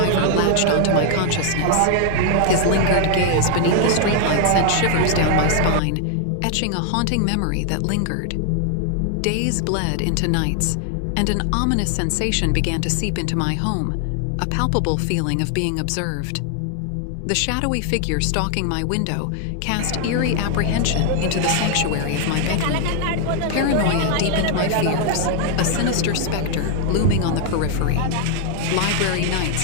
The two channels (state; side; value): different; both; correlation 0.00